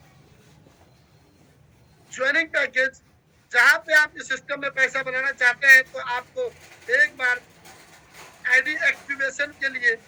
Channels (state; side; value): identical; both; correlation 1.00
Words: joining package जहां पे आप इस सिस्टम में पैसा बनाना चाहते हैं तो आपको एक बार आईडी एक्टिवेशन के लिए